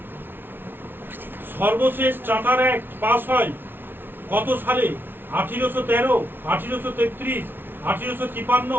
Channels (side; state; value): left; late; 0.10 ms